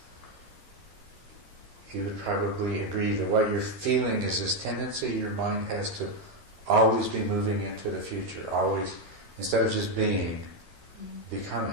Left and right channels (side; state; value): left; late; 13 ms